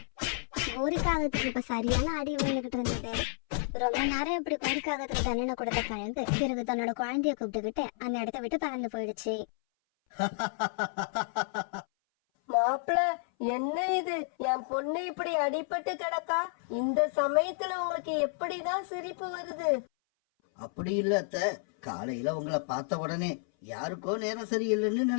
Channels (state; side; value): silent; right; 57 dB below the other